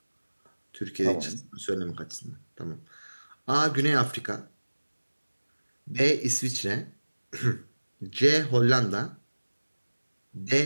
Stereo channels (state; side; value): inverted; both; correlation -1.00